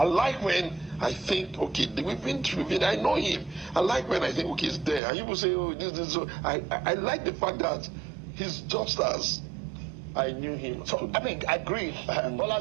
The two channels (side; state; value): left; drops out; at 5.0 s